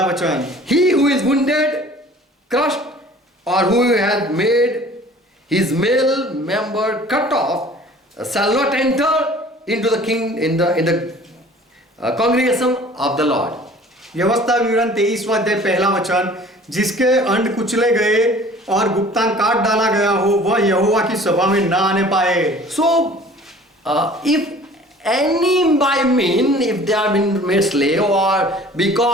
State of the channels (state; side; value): normal; both; correlation 0.49